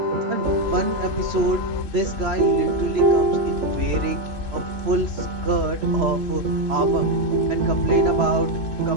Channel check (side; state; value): left; late; 3.0 ms